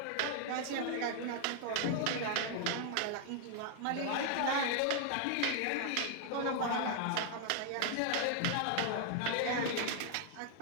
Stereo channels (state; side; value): different; both; correlation 0.00